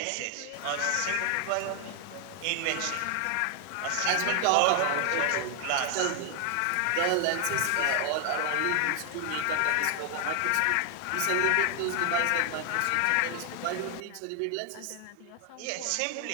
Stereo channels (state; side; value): different; both; correlation 0.00